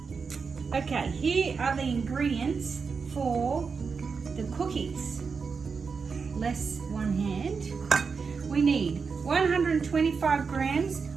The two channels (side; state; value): left; quieter; 5.3 dB